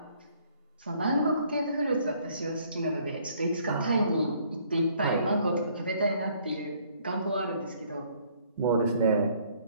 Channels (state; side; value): inverted; both; correlation -0.63